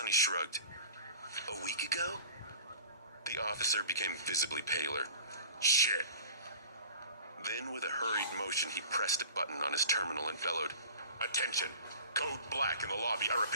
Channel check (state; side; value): inverted; both; correlation -0.41